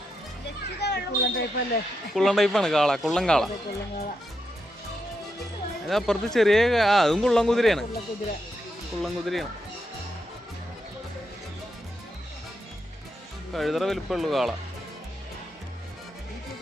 കുള്ളൻ ടൈപ്പാണ്. കാള, കുള്ളൻ കാള. അപ്പുറത്ത് ചെറിയ അതും കുള്ളൻ കുതിരയാണ്. കുള്ളൻ കുതിരയാണ്. കഴുതറ വലിപ്പമുള്ളൂ കാള.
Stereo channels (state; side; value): normal; both; correlation 0.84